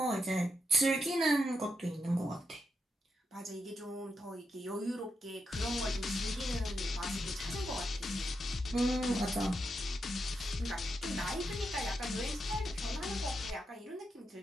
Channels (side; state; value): both; normal; correlation 0.84